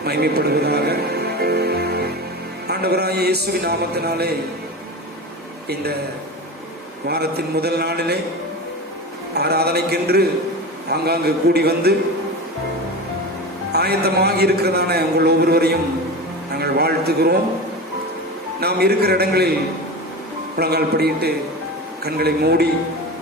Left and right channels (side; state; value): both; normal; correlation 0.27